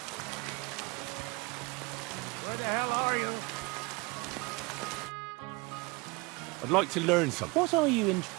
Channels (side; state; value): left; quieter; 25.8 dB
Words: the hell are you? I'd like to learn something. What are you in...